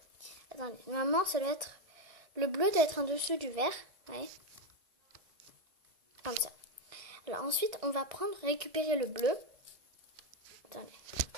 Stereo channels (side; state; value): left; late; 1.6 ms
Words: Attendez, normalement, ça doit être le bleu doit être en dessous du vert, ouais, comme ça. Alors ensuite, on va récupérer le bleu. Attendez,